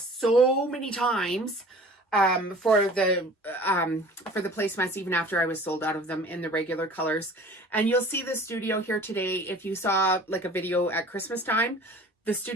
so many times for the placemats, even after I was sold out of them in the regular colors. And you'll see the studio here today. If you saw like a video at Christmas time, the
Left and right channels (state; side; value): normal; both; correlation 0.45